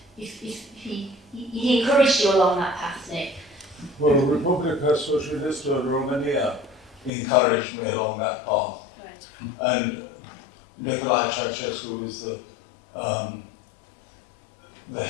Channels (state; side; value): drops out; right; at 7.1 s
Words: he encouraged you along that path, Nick. Well, Republica Socialistă Romania encouraged me along that path. Right. And Nicolae Ceausescu was the